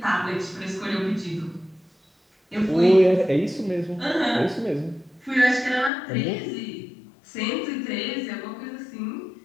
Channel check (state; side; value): drops out; right; at 5.9 s